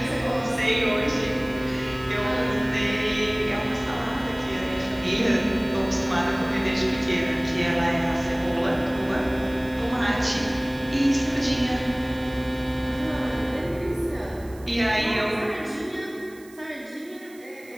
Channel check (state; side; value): noise; right; hiss, 24 dB below the sound